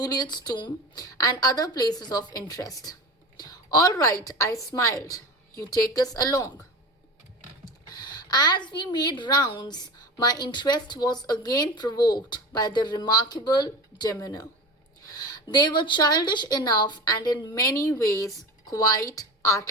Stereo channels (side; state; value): both; normal; correlation 0.30